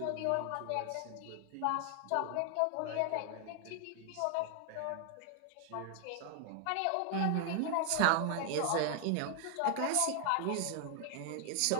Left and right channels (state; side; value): different; both; correlation 0.00